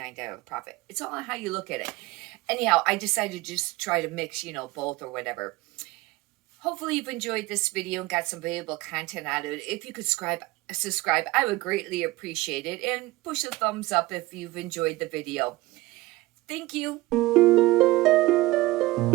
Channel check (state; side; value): quieter; left; 19.8 dB